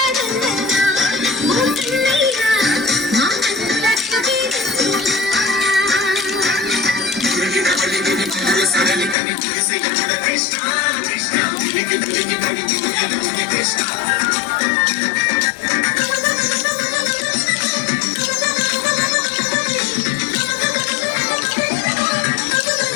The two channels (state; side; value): drops out; right; at 9.2 s